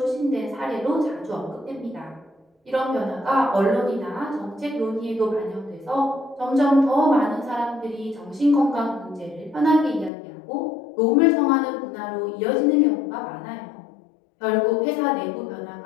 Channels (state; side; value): drops out; right; at 10.1 s